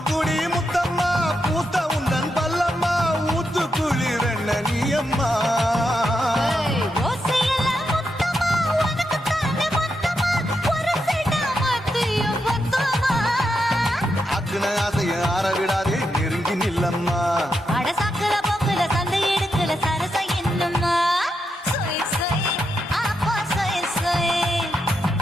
விடாதே நெருங்கி நில்லம்மா அட சாக்குல போக்குல சந்தை எடுக்கல சரச என்னம்மா சொய் சொய் அப்பா சொய் சொய்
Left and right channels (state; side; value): normal; both; correlation 0.84